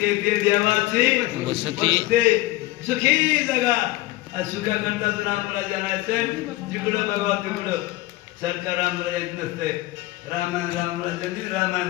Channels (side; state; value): right; quieter; 18.5 dB